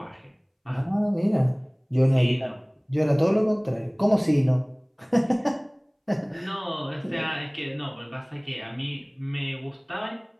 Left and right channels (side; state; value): both; identical; correlation 1.00